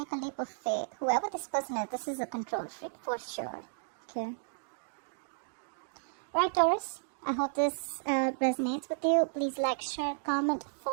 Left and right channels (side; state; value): left; silent; digital silence